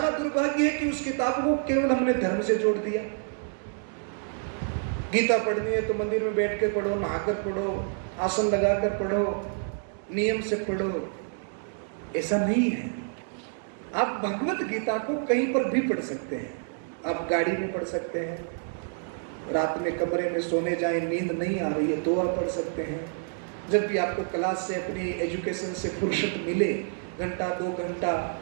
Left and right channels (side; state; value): left; silent; 59 dB below the other